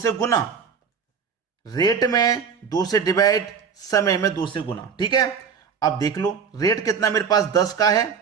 गुना। रेट में 2 से डिवाइड, समय में 2 से गुना। ठीक है, अब देख लो, रेट कितना मेरे पास 10 का है,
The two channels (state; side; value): quieter; left; 6.5 dB